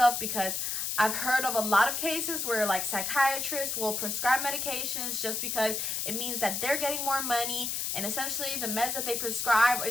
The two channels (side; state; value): left; noise; hiss, 1 dB below the sound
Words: because I've heard of a lot of cases where like psychiatrists will prescribe medications just because it means that they're getting more money, and essentially the meds that they prescribe